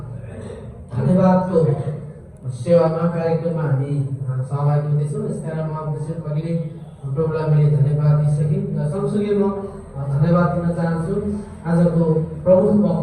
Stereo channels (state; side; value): identical; both; correlation 1.00